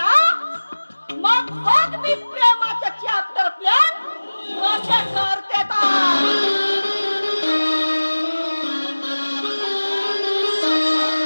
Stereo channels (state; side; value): inverted; both; correlation -1.00